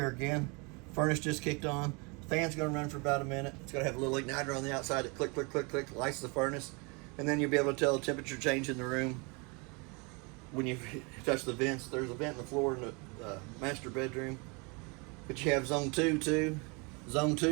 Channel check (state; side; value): quieter; left; 30.4 dB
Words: again, furnace just kicked on. Fan's gonna run for about a minute. It's gonna have a little igniter on the outside that click, click, click, click, lights the furnace. And then you'll be able to tell the temperature change in the room when you touch the vents. There's a vent in the floor in the master bedroom. But you have zone 2 too. Zone